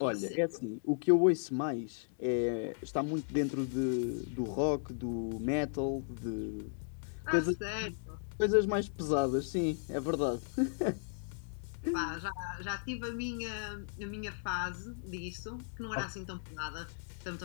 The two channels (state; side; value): silent; right; digital silence